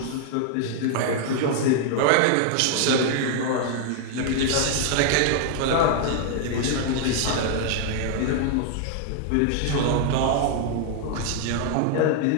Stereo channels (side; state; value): both; different; correlation 0.00